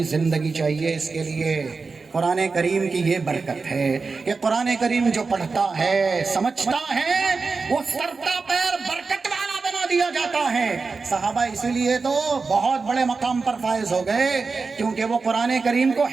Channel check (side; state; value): left; quieter; 4.4 dB